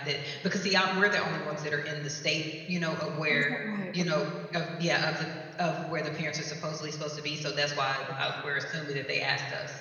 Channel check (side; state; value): both; identical; correlation 1.00